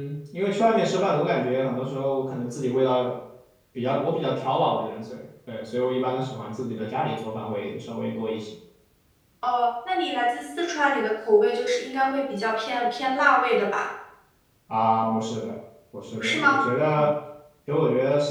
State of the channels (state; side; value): identical; both; correlation 1.00